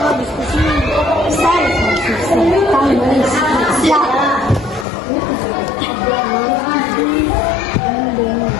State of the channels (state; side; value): drops out; right; at 4.9 s